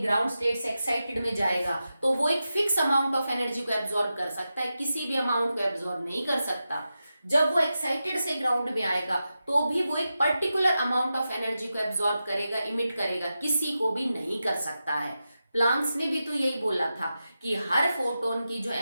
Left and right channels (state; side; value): inverted; both; correlation -0.91